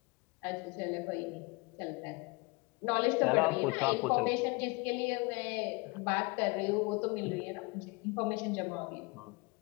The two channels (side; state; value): right; quieter; 27.0 dB